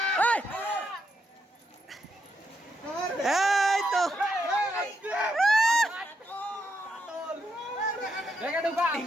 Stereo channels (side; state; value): both; normal; correlation 0.81